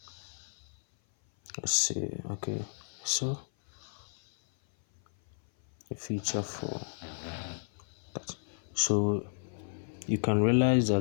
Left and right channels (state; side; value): silent; right; 56 dB below the other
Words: okay, so a feature for that. So you can realize